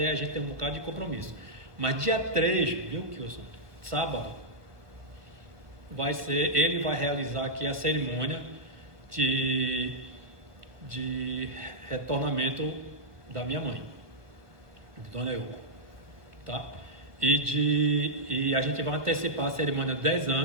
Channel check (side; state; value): left; late; 1.4 ms